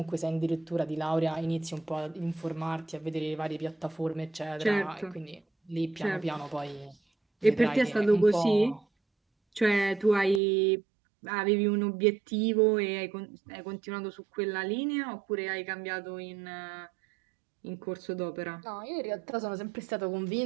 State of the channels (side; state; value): left; drops out; at 10.4 s